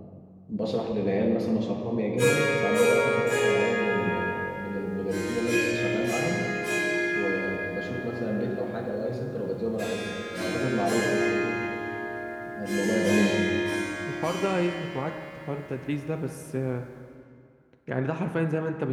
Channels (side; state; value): both; identical; correlation 1.00